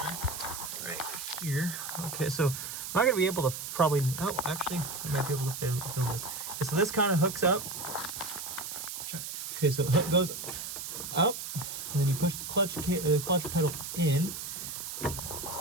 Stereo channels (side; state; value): right; noise; hiss, 7 dB below the sound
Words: Right here. Okay, so I'm not gonna be able to probably, oh, actually, I might be able to film this. Okay, so this kind of hooks up. Okay, so the hook goes up, and then you push the clutch pedal in.